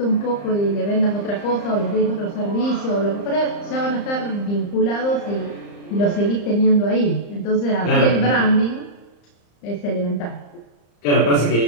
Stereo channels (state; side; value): late; right; 34 ms